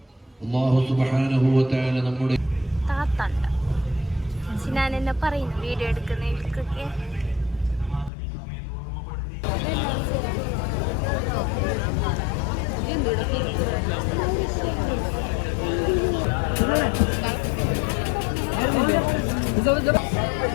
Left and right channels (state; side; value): drops out; right; at 8.1 s